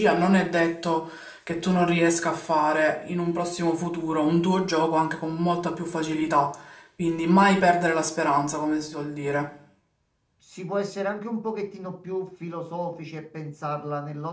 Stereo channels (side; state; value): both; identical; correlation 1.00